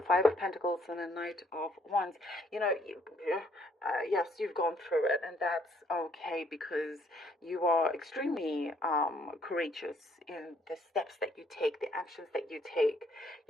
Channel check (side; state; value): both; normal; correlation 0.66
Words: Five of Pentacles and the Knight of Wands. Yes, you've gone through it, and that's okay, because you are extremely courageous in the steps that you take, the actions that you take.